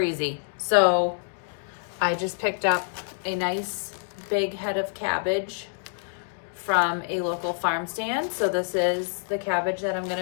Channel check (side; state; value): right; silent; digital silence